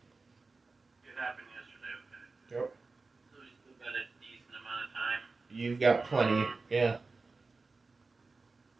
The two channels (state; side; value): quieter; left; 3.9 dB